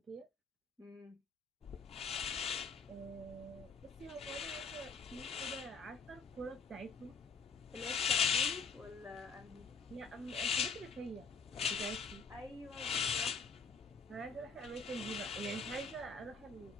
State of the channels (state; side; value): quieter; right; 4.7 dB